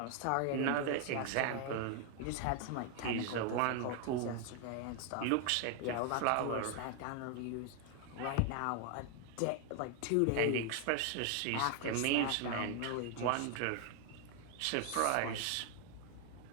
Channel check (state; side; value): different; both; correlation 0.00